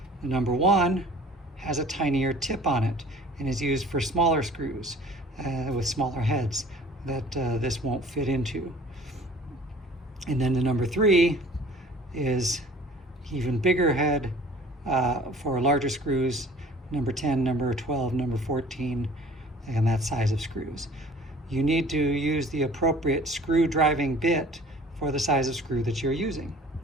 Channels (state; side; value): normal; both; correlation 0.48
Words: The number 1 has a tinier tip on it and is used for smaller screws with smaller heads that this won't fit into. And then the number 3 is even bigger head for larger screws, number 10, number 12, number 14, and that size of screws. You need to use the appropriate screw driving bit for the size of screw that you're using.